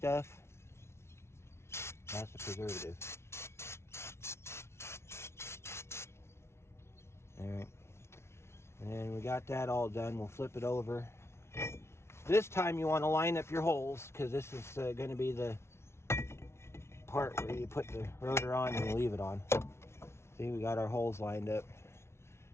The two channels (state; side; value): late; right; 0.13 ms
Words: That's the preservative. Alright. And we got that all done. We'll flip it over. This time you want to line up your holes because this is going to be the part where you put the rotor on and you leave it on. See, we got our holes lined up.